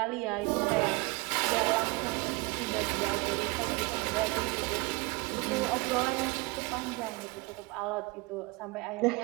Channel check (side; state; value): left; quieter; 25.1 dB